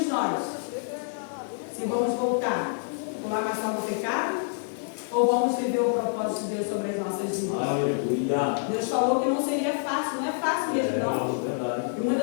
nós se vamos voltar por lavação do pecado ou vamos viver o propósito de Deus sobre as nossas vidas. Aleluia. Deus falou que não seria fácil, não é fácil mesmo não. Verdade. E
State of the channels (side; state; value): right; silent; 56 dB below the other